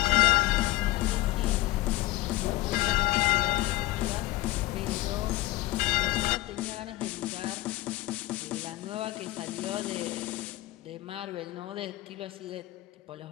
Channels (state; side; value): quieter; right; 17.8 dB